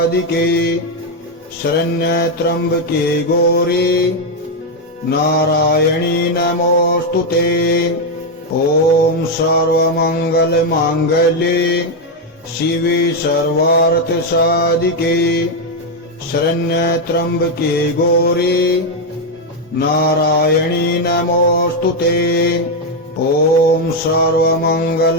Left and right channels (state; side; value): normal; both; correlation 0.04